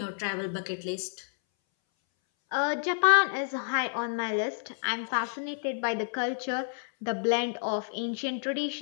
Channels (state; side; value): silent; right; 58 dB below the other